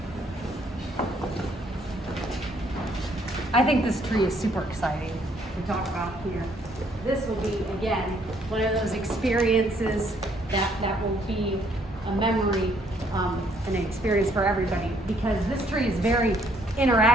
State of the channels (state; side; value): normal; both; correlation 0.67